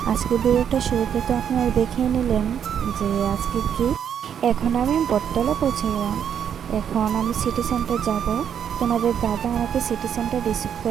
আজকে ভিডিওটা শুরুতে তো আপনারা দেখেই নিলেন যে আজকে কি। এখন আমি বটতলা পৌঁছে গেলাম। এখন আমি সিটি সেন্টার যাব। তোমাদের দাদা আমাকে সিটি সেন্টার রিসিভ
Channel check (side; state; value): left; quieter; 8.6 dB